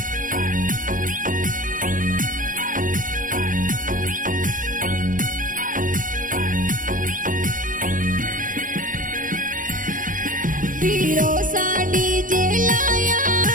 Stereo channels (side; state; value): left; late; 0.39 ms